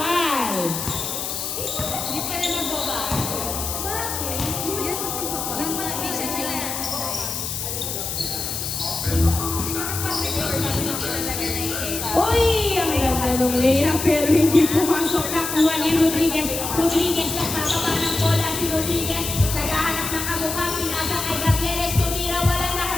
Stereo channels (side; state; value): left; noise; hiss, 4 dB below the sound